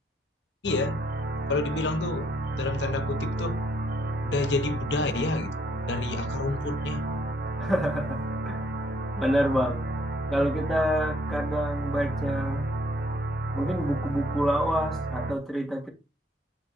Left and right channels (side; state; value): both; normal; correlation 0.67